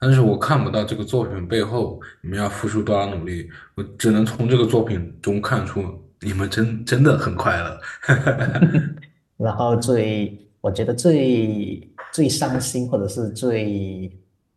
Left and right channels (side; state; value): both; identical; correlation 1.00